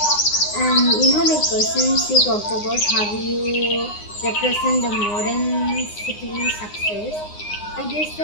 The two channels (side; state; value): right; late; 9.7 ms